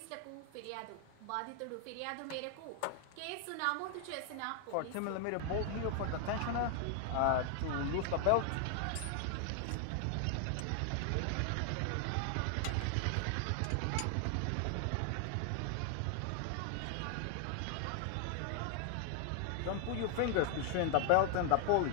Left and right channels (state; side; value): different; both; correlation 0.00